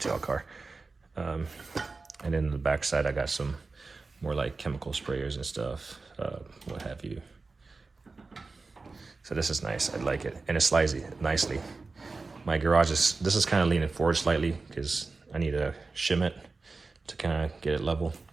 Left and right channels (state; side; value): quieter; left; 3.9 dB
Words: a car. And then the back side, I got some more like chemical sprayers and stuff, what have you. So this is nice, I like it. And it slides nicely. My garage this is kind of leaning forward slightly because I need to shim it to kind of get it level.